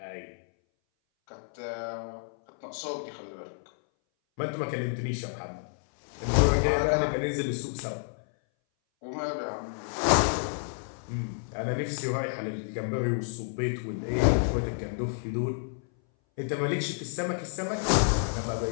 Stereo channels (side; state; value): right; silent; 58 dB below the other